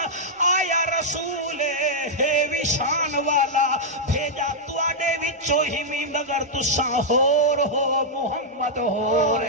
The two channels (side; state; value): both; normal; correlation -0.05